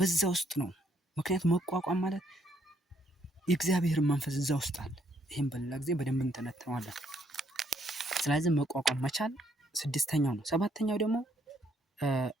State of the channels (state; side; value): normal; both; correlation 0.70